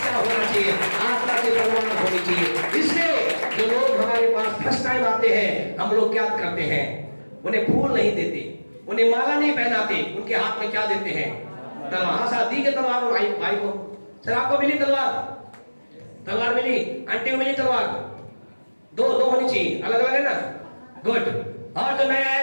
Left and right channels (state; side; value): inverted; both; correlation -1.00